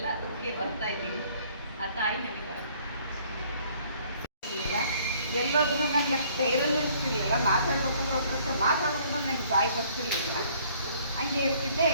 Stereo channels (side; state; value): both; inverted; correlation -0.60